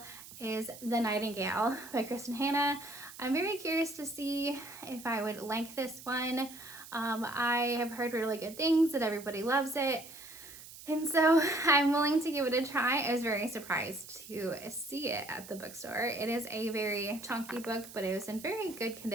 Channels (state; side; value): noise; right; hiss, 16 dB below the sound